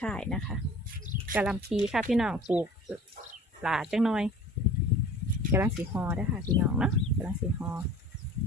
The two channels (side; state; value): both; normal; correlation 0.45